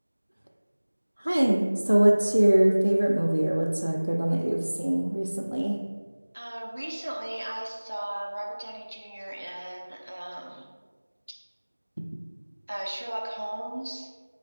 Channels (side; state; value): both; inverted; correlation -1.00